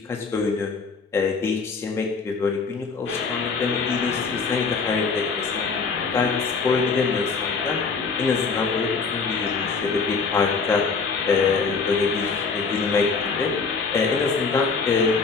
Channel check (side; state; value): right; quieter; 4.9 dB